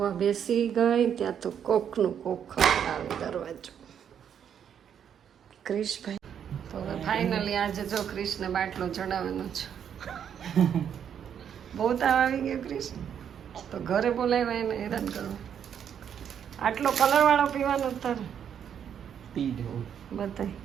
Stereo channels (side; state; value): left; quieter; 8.6 dB